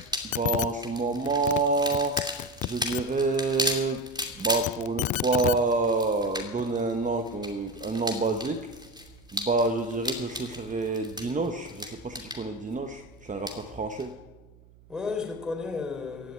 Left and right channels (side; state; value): right; noise; hum, 25 dB below the sound